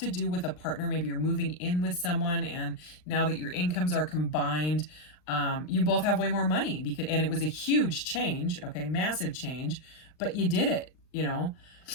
do with a partner. Maybe you're moving in with someone, and now that your incomes are combined, you both have way more money, because, and it was a huge change, okay, massive change, but you did it, you know.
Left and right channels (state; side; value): late; right; 39 ms